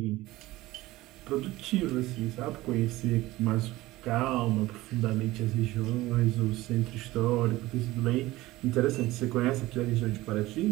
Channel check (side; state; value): left; quieter; 18.1 dB